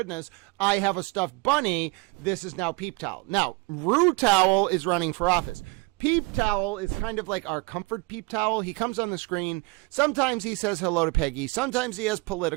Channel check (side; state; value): left; quieter; 26.3 dB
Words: I have a stuffed bunny. This is now Peep Towel. Now, Rue Towel is running for office. Peep Towel is kind of like our comfort Peep Towel. He comes on the screen. Sometimes he says hello to Peggy. Sometimes he has